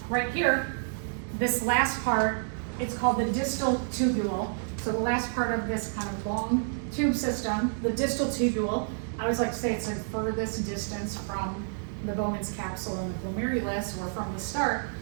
Right here, this last part, it's called the distal tubule. So the last part of this kind of long tube system, the distal tubule, I always like to say it's the furthest distance from the Bowman's capsule and the glomerulus, or from the start.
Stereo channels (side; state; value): left; silent; digital silence